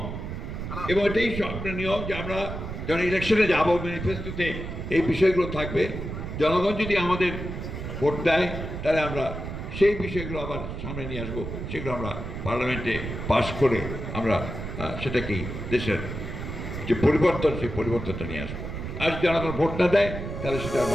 এবং এটাই স্বপ্নের নিয়ম যে আমরা যখন ইলেকশনে যাবো, ম্যানিফেস্টোতে এই বিষয়গুলো থাকবে। জনগণ যদি আমাদের ভোট দেয়, তাহলে আমরা সেই বিষয়গুলো আবার সামনে নিয়ে আসবো, সেগুলো আমরা পার্লামেন্টে পাশ করে আমরা সেটাকেই দেশের যে পরিবর্তন, সেই পরিবর্তনটা নিয়ে আসবো। আর জনগণ ভোট না দেয়, তাহলে সেটা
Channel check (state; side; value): noise; right; rumble, 6 dB below the sound